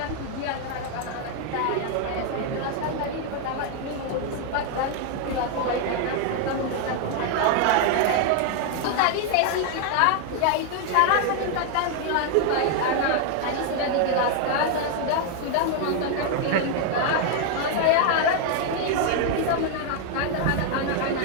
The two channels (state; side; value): different; both; correlation 0.00